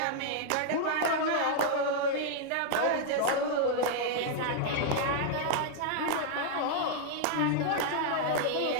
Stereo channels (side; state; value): both; different; correlation -0.01